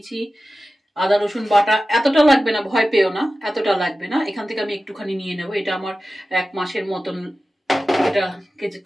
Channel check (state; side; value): normal; both; correlation 0.95